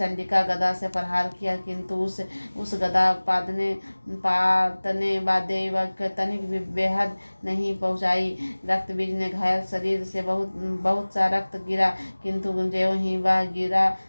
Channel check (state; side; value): inverted; both; correlation -1.00